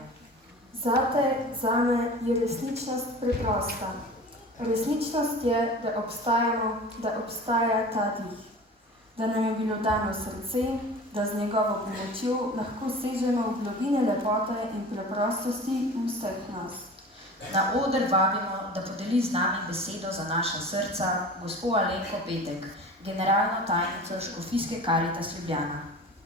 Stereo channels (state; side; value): normal; both; correlation 0.38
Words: Zate, zame je resničnost preprosta. Resničnost je, da obstajamo, da obstaja ta dih. Da nam je bilo dano srce, da z njegovo pomočjo lahko sežemo v globine lepote in preprostosti vseh nas. Na oder vabimo, da podeli z nami besedo za naša srca gospo Alenko Petek, generalno tajnico Škofijske Karitas Ljubljana.